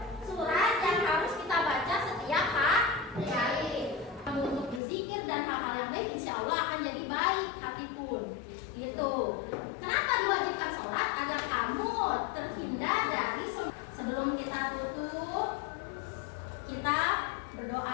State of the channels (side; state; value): right; drops out; at 4.8 s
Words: surat yang harus kita baca setiap hari. Kamu untuk berzikir dan hal-hal yang baik, insya Allah akan jadi baik hati pun. Gitu. Kenapa diwajibkan sholat? Agar kamu terhindar dari sebelum kita tutup, kita berdoa